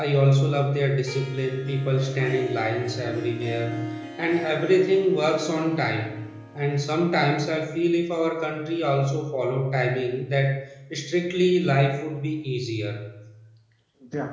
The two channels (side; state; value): both; identical; correlation 1.00